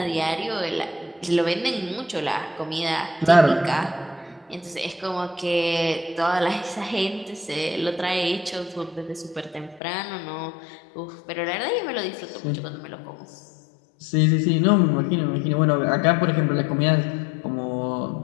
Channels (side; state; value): right; drops out; at 9.8 s